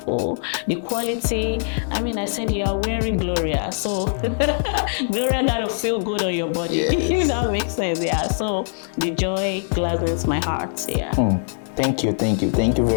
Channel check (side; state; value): right; silent; digital silence